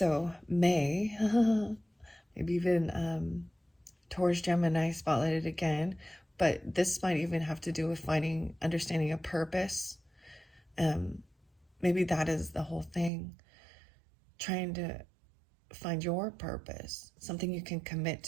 May, maybe even Taurus, Gemini spotlighted again. But this might even have to do with understanding a purpose. Maybe that is the whole thing. Trying to find your purpose, something you can commit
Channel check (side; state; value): left; drops out; at 13.1 s